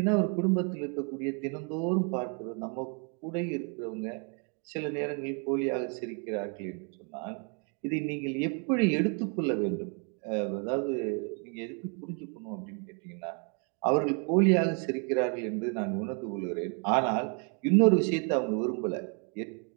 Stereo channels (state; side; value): quieter; left; 37.5 dB